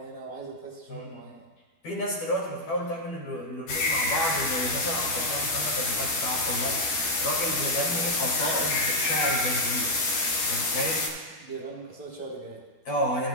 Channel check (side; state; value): right; late; 12 ms